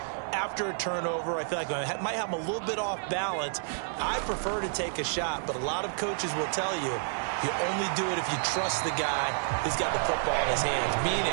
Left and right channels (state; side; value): silent; left; digital silence